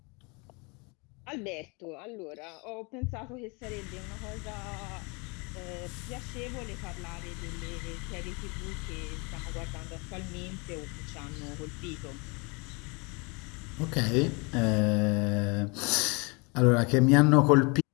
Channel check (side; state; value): right; quieter; 30.3 dB